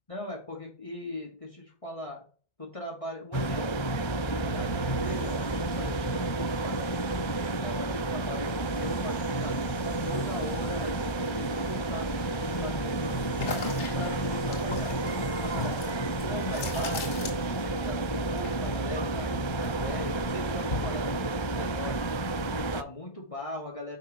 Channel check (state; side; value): late; right; 1.3 ms